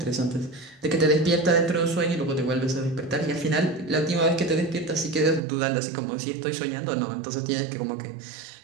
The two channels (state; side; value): drops out; left; at 5.4 s